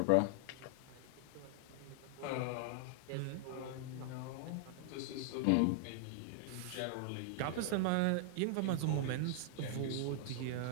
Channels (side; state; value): both; different; correlation 0.00